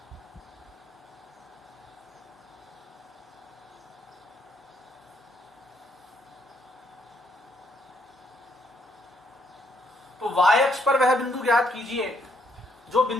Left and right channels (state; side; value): normal; both; correlation 0.72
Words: तो y अक्ष पर वह बिंदु ज्ञात कीजिए जो